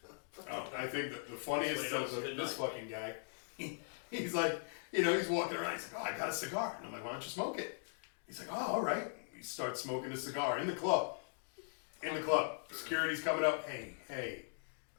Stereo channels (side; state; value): right; silent; digital silence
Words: Oh, I think the funniest is this fucking guy. He's like, he's walking around. He's like, oh, I got a cigar. And I'm like, why don't you smoke it? He's like, oh, all right. He starts smoking the cigar in the club. Security's coming up. Hey,